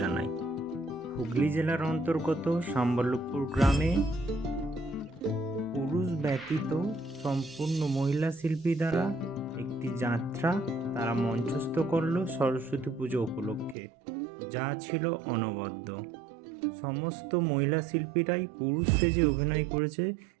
হুগলি জেলার অন্তর্গত সম্বলপুর গ্রামে পুরুষ ব্যতীত সম্পূর্ণ মহিলা শিল্পী দ্বারা একটি যাত্রা তারা মঞ্চস্থ করলো সরস্বতী পুজো উপলক্ষে, যা ছিল অনবদ্য। সমস্ত মহিলা শিল্পীরাই পুরুষ সেজে অভিনয় করেছে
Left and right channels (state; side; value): drops out; left; at 13.8 s